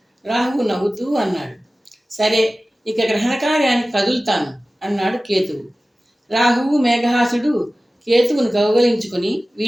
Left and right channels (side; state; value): both; normal; correlation 0.96